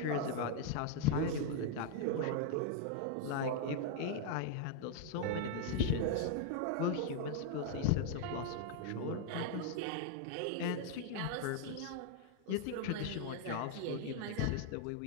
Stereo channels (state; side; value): different; both; correlation 0.00